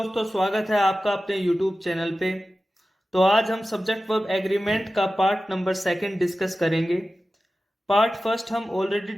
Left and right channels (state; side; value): normal; both; correlation 0.95